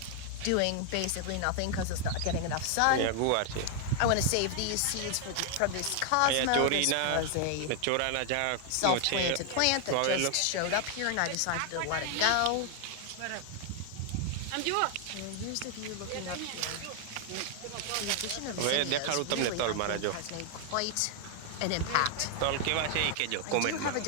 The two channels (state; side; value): different; both; correlation 0.00